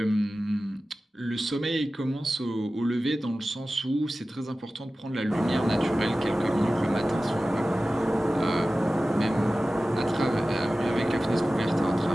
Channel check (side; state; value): both; normal; correlation 0.96